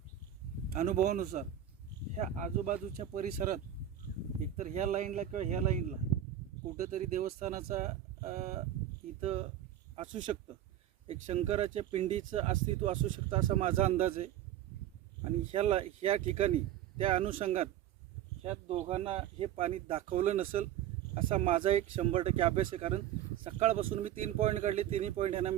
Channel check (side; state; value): left; quieter; 11.3 dB